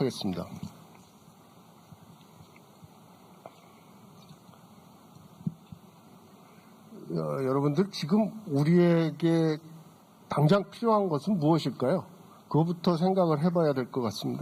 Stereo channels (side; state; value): both; identical; correlation 1.00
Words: 여러분들 지금 우리에게 당장 필요한 것은 무엇일까요? 그거부터 생각을 해봐야 될 것